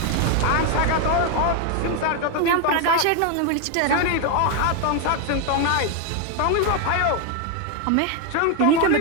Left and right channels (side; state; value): both; different; correlation 0.01